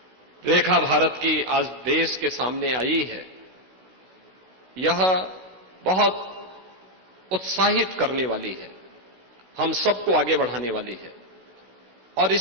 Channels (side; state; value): left; late; 16 ms